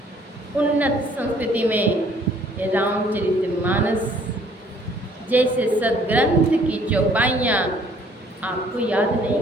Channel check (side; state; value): both; normal; correlation 0.60